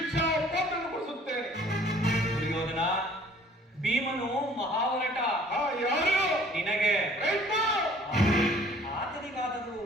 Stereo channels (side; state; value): both; normal; correlation 0.54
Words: ಪಾತ್ರನ್ನು ಕೊಡಿಸುತ್ತೇನೆ. ದುರ್ಯೋಧನ, ಭೀಮನು ಮಹಾವರಟ. ಯಾರು? ನಿನಗೆ ಕೃಷ್ಣ, ಆತನಿಗಾದರೂ